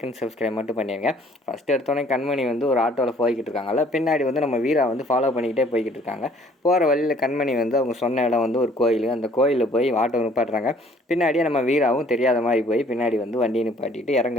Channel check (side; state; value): both; normal; correlation 0.58